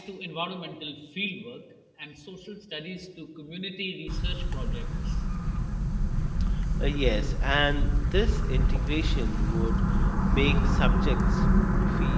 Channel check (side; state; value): both; identical; correlation 1.00